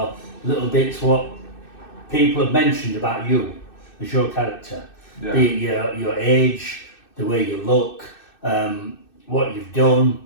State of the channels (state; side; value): late; right; 2.6 ms